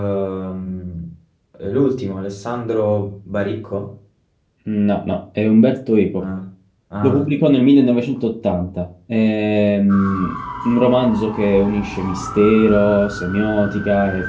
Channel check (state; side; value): identical; both; correlation 1.00